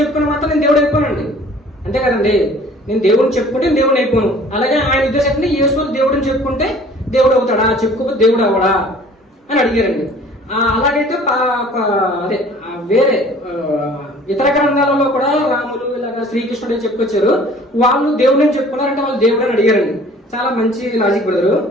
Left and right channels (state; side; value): normal; both; correlation 0.50